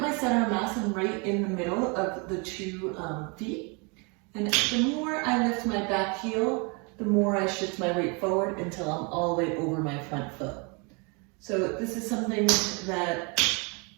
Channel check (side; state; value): left; quieter; 32.0 dB